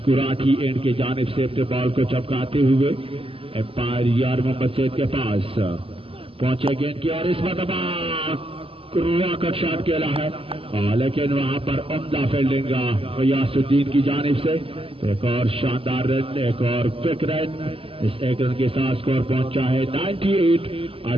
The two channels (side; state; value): left; late; 0.27 ms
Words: کراٹھی اینڈ کی جانب سے اپنے بال کو چپکاتے ہوئے امپائر یار محمد سید کے پاس پہنچے گیند کی اور اس مرتبہ راکٹ شاٹ کھیلا ہے، لیکن وہاں پر عمدہ فیلڈنگ غیاث الدین کی جانب سے ایک اور شاندار رن، ایک اور کوئک رن، اس ایک رن کے ساتھ سکور پہنچا ہے